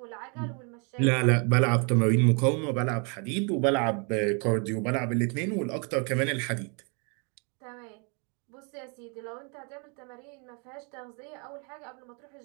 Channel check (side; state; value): left; quieter; 35.6 dB